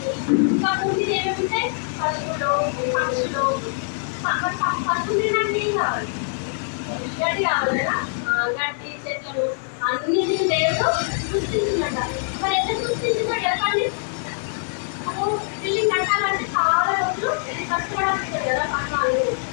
ఇంకా భూమిని ఏమేమి ఉంటాయి? పశువులు, పక్షులు. పశువులు తినడానికి ఏం కావాలి? గడ్డి కావాలి కదా. గడ్డి, చెట్లను అన్నిటిని దేవుడు సృష్టించినట్ట. మరి ఎట్లా సృష్టించిందో చెప్పండి. బిల్డింగ్ కట్టాలంటే చాలా రోజులు కష్టపడాల్సి ఉంటుంది కదా, పట్టాలు.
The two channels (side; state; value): right; silent; digital silence